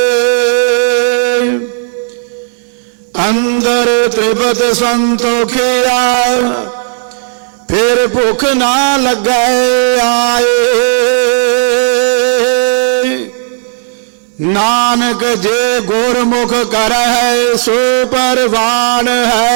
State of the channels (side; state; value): left; silent; 70 dB below the other